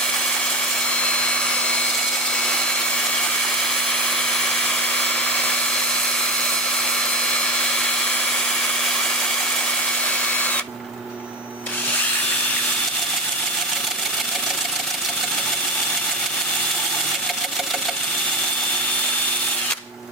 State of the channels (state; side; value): normal; both; correlation 0.21